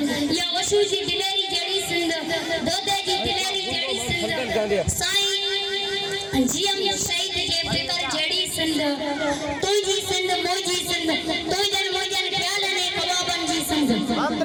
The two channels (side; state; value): both; identical; correlation 1.00